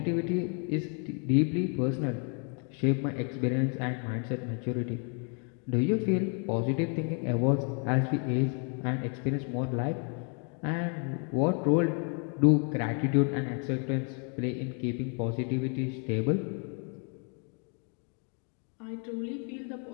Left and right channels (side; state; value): right; quieter; 39.6 dB